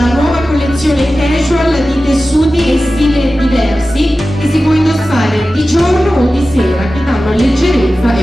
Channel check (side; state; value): both; normal; correlation 0.94